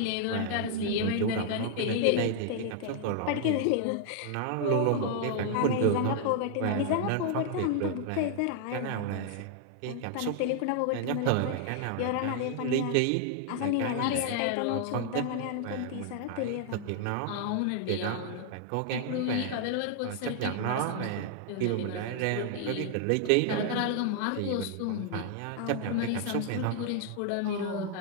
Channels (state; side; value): different; both; correlation 0.00